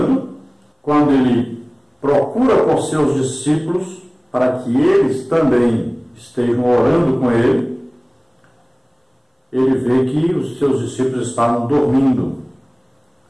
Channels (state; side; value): identical; both; correlation 1.00